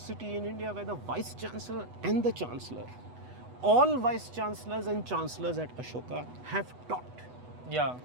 in India where the Vice Chancellor and the Chancellor, all Vice Chancellors and Chancellors at Ashoka have taught. Yeah.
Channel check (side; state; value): left; late; 8.1 ms